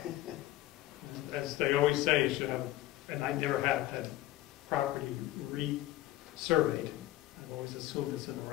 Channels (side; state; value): right; quieter; 15.3 dB